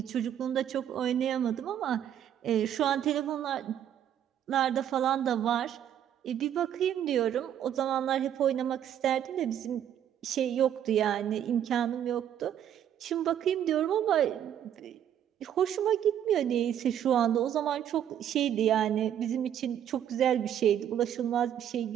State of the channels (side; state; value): left; quieter; 10.1 dB